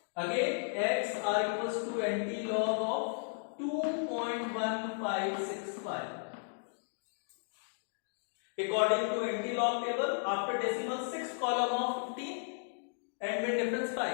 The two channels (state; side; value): silent; right; digital silence